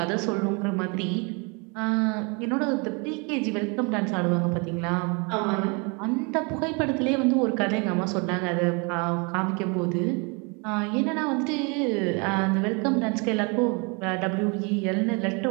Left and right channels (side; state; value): left; quieter; 31.8 dB